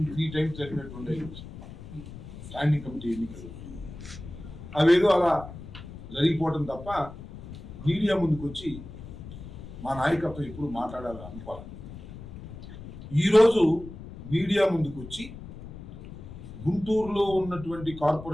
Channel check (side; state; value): left; noise; rumble, 13 dB below the sound